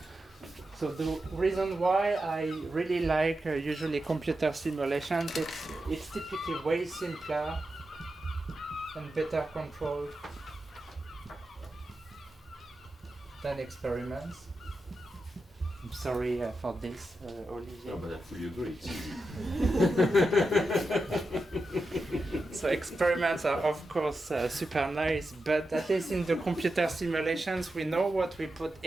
So the reason why I really like usually computer simulations, it's typically way simpler and better controlled than experiments. I'm sorry for this, Olivier. No, but I fully agree. So experiments are of course super nice, but at least in the computer simulations we know what we put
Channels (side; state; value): both; normal; correlation 0.89